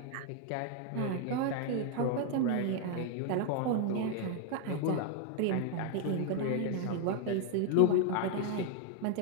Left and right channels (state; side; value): different; both; correlation 0.00